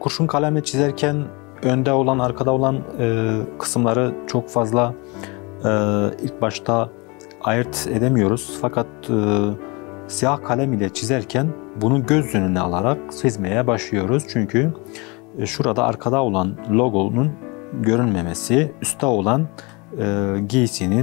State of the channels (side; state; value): right; quieter; 28.1 dB